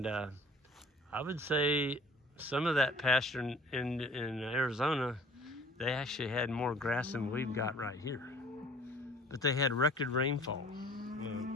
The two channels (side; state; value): both; normal; correlation 0.50